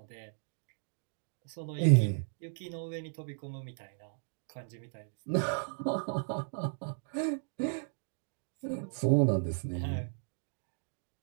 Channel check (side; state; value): left; silent; digital silence